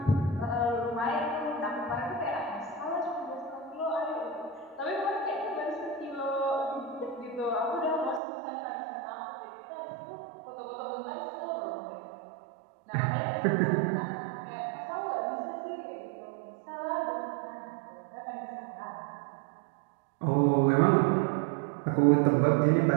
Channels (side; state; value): left; drops out; at 8.2 s